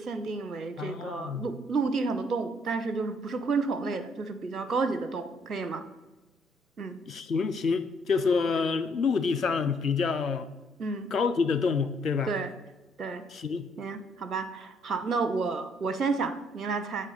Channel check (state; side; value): normal; both; correlation 0.67